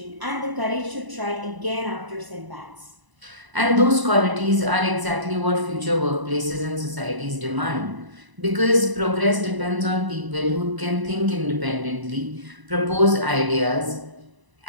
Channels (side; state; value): left; late; 1.0 ms